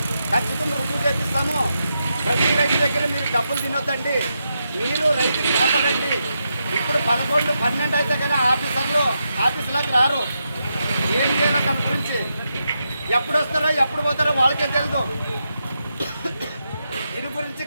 ఖచ్చితంగా రుజువు చేపిస్తాము. ప్రతి రైతు దగ్గర మీరు డబ్బులు తినొద్దండి, మీరు రైతుకి కాపాడండి. ఇప్పుడు 11, 12 అయితే కానీ ఆఫీసులోకి రారు. ఏం చేయాలో దాని గురించి, ఎప్పుడు వస్తారో ఎప్పుడు పోతారో వాళ్ళకే తెలుసు. దీని గురించి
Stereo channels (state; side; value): inverted; both; correlation -0.85